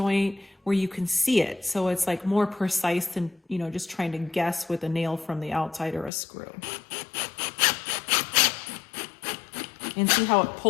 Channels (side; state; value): right; drops out; at 6.1 s